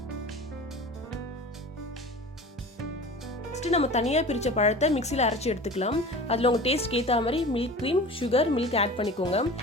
நெக்ஸ்ட் நம்ம தனியாக பிரித்த பழத்தை மிக்சியில் அரைச்சி எடுத்துக்கலாம். அதில் உங்கள் டேஸ்ட்க்கு ஏற்ற மாதிரி milk cream, sugar, milk add பண்ணிக்கோங்க.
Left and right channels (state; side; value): normal; both; correlation 0.37